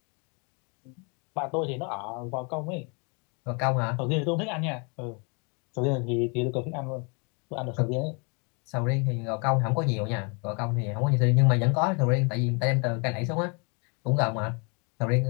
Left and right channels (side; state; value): right; quieter; 34.2 dB